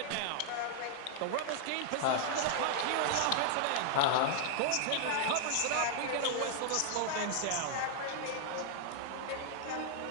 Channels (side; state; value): both; different; correlation -0.01